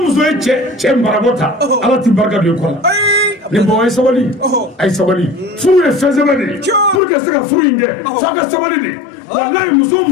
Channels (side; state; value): right; drops out; at 7.0 s